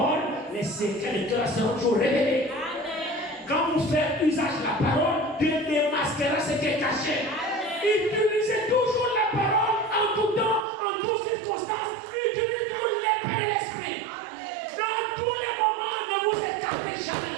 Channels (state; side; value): drops out; left; at 10.7 s